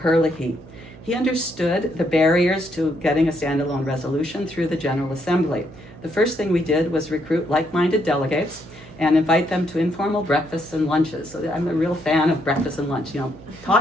He understood the barriers to getting a standalone resolution through the General Assembly. The first thing we did was recruit like-minded delegates and invite them to informal breakfasts and lunches. So I'm a real fan of breakfast and lunch. You know,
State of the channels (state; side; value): noise; right; hum, 20 dB below the sound